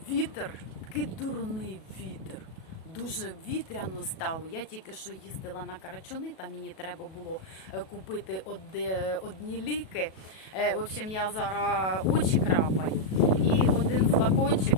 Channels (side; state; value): right; late; 37 ms